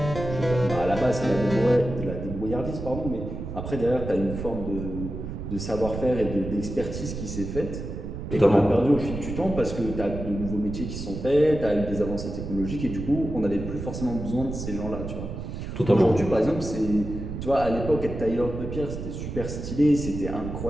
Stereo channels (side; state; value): right; noise; rumble, 7 dB below the sound